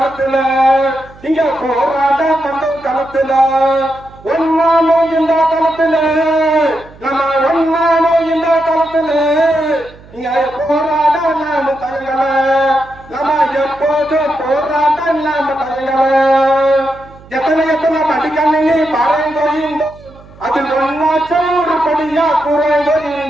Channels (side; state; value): right; noise; hum, 23 dB below the sound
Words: இங்க போராட்ட பண்றோம் களத்துல. ஒன்னானோ இந்த களத்துல, நம்ம ஒன்னானோ இந்த களத்துல. இங்க போராட நாம தயங்கல, நம்ம எப்போதும் போராட்ட நாம தயங்கல. எத்தனை எத்தனை மடிக்கணினி பாறைந்தோயிந்தோ, அதில் ஒன்னாச்சும் ஒரு படியா